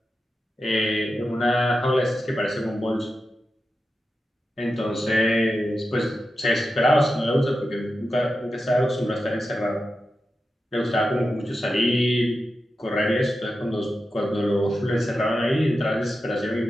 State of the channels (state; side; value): normal; both; correlation 0.90